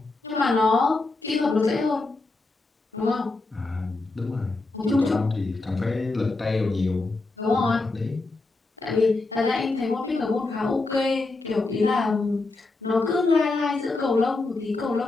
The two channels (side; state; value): right; quieter; 3.4 dB